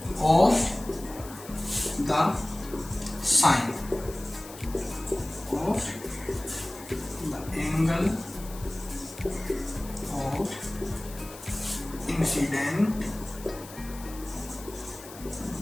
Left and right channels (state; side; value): noise; left; hiss, 16 dB below the sound